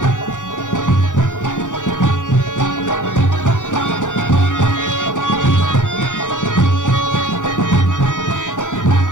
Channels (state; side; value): late; right; 0.86 ms